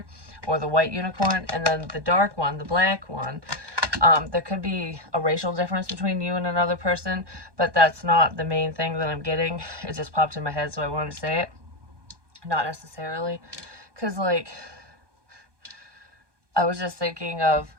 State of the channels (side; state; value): left; late; 1.2 ms